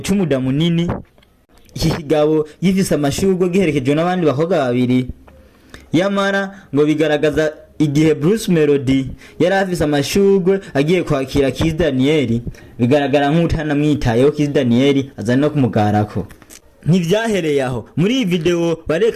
cy'umuda munini, ikigabo gifise amashurwe giherekejwe n'abandi bakobwa babiri. Yamara ngo bigaragaza igihe Bruce Melodie yari afise amashurwe agiye kwakira Kiss Daniel, bigaragara nk'utana mwitayeho Kiss Daniel aza no kumugarako. Ntivyahereye aho, muri iyi video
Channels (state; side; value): identical; both; correlation 1.00